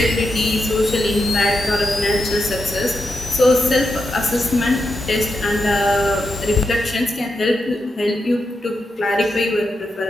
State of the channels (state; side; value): normal; both; correlation 0.86